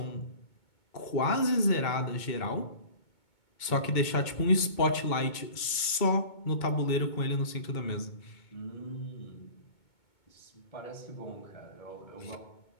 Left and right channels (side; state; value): right; late; 2.2 ms